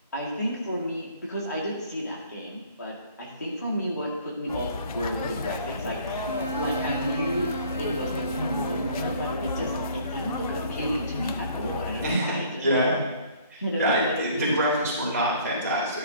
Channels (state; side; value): inverted; both; correlation -0.55